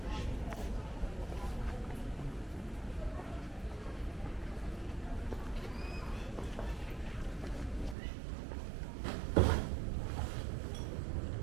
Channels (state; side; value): drops out; left; at 8.0 s